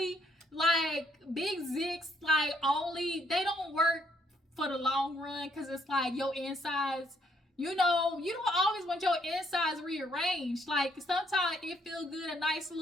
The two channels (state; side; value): normal; both; correlation 0.70